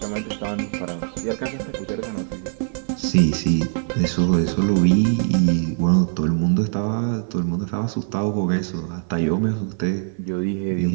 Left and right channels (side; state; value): left; silent; 56 dB below the other